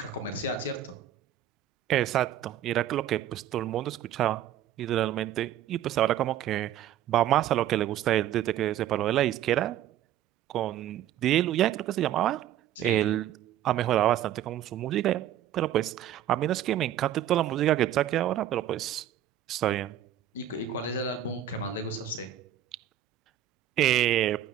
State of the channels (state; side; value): quieter; left; 11.4 dB